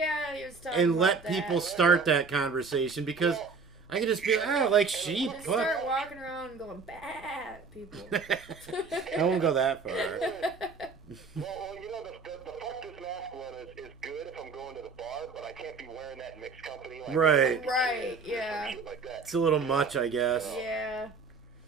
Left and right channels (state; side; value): quieter; left; 4.7 dB